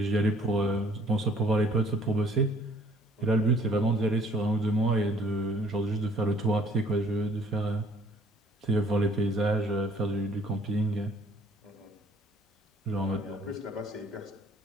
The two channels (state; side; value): normal; both; correlation 0.59